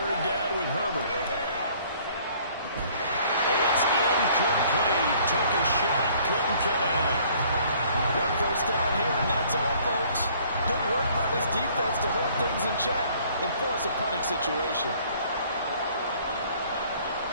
down with Herbert. It's incomplete. Took a shot, couldn't connect. 1 first down here, and that's all, folks. Good work by this defense to hold things in check and force a punting situation.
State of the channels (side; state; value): both; inverted; correlation -0.58